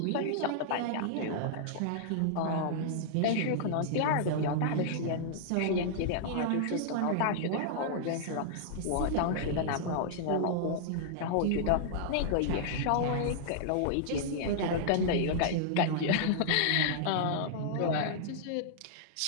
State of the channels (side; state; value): both; different; correlation -0.01